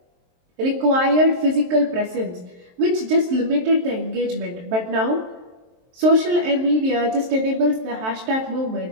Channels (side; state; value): left; late; 23 ms